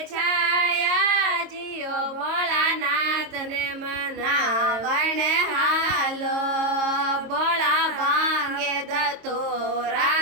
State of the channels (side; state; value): left; late; 22 ms